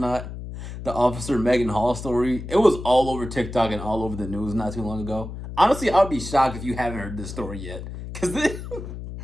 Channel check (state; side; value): noise; left; hum, 9 dB below the sound